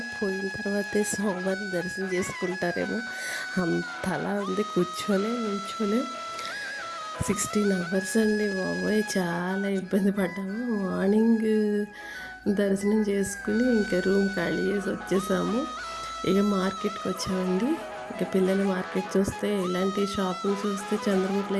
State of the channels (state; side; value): identical; both; correlation 1.00